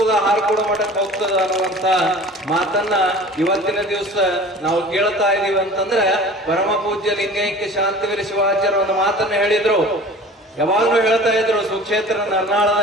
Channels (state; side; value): normal; both; correlation 0.42